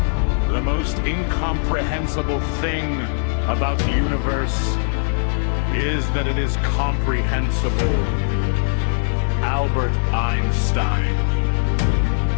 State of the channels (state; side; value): silent; right; digital silence